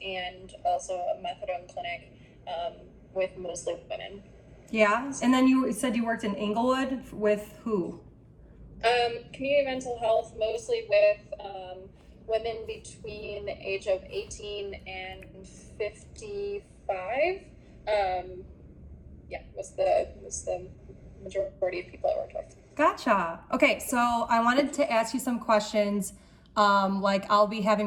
and also a methadone clinic with mostly women. Yeah, and then you said you worked in Inglewood with who? Community mental health, mostly with women between the age of 18 and 55. Was the majority of people I worked with. Gotcha. Okay, so I wanted to ask you some questions. Like I'll be having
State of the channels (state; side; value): identical; both; correlation 1.00